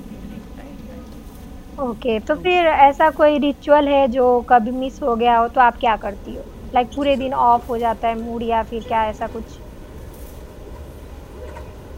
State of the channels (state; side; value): identical; both; correlation 1.00